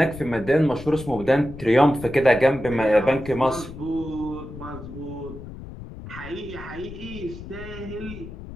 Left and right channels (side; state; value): left; noise; rumble, 13 dB below the sound